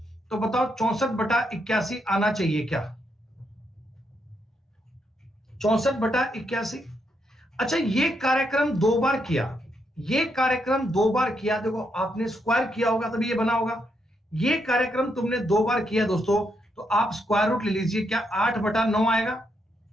तो बताओ 64/81 आना चाहिए क्या? 64/81। अच्छा, ये कार्यक्रम 2 बार किया, ये कार्यक्रम 2 बार किया। देखो आपने स्क्वायर किया होगा तभी ये बना होगा। ये कार्यक्रम तुमने 2 बार किया दोस्तों, तो आप स्क्वायर रूट ले लीजिए। क्या 8/9 आएगा?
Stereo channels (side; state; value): both; normal; correlation 0.79